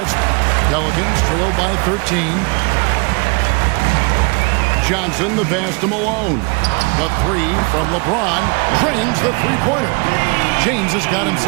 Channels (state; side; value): quieter; left; 31.1 dB